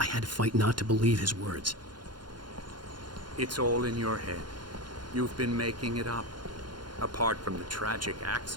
had to fight not to believe his words. It's all in your head. You've been making it up. Apart from the tragic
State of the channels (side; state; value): left; late; 0.71 ms